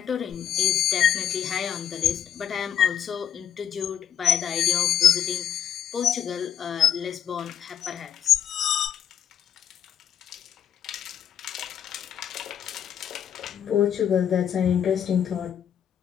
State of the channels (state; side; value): quieter; right; 9.2 dB